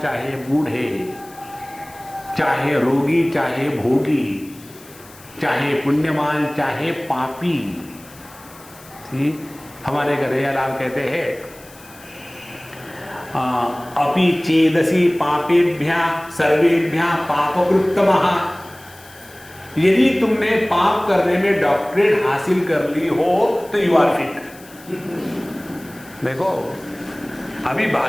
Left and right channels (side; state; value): left; noise; hiss, 22 dB below the sound